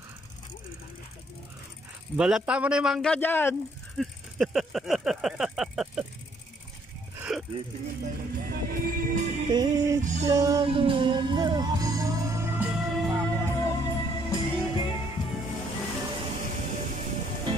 Balata mo na yung mangga dyan.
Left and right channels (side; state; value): both; normal; correlation 0.67